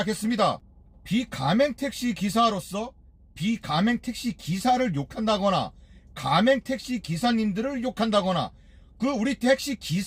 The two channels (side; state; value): both; identical; correlation 1.00